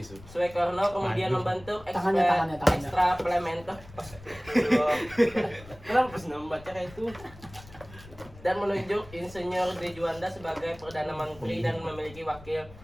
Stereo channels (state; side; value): noise; left; rumble, 20 dB below the sound